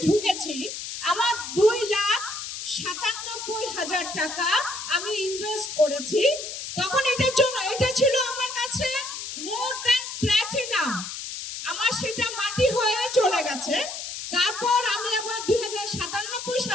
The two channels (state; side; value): noise; left; hiss, 7 dB below the sound